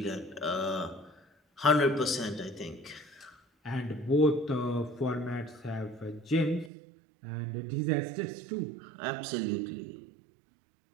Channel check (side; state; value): left; drops out; at 6.7 s